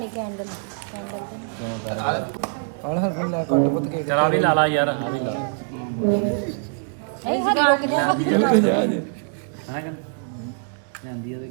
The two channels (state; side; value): silent; left; 63 dB below the other